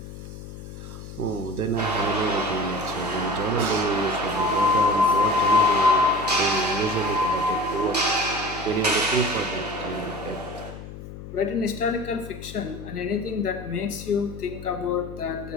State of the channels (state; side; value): noise; left; hum, 12 dB below the sound